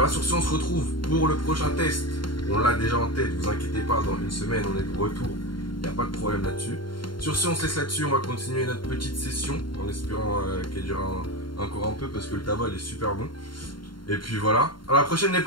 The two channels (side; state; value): right; late; 0.72 ms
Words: sur ce on se retrouve pour le prochain test. On l'a déjà en tête, vous inquiétez pas, dans une semaine on est de retour, il n'y a pas de problème là-dessus. Sur ce, on se laisse là-dessus. On va continuer notre petite session en espérant qu'elle dure encore un peu parce que le tabac il est super bon. Et puis voilà. À la prochaine, les